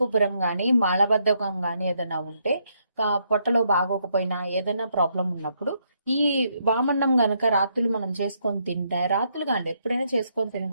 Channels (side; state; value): both; inverted; correlation -0.75